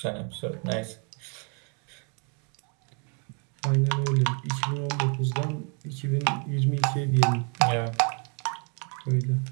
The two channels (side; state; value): left; quieter; 36.9 dB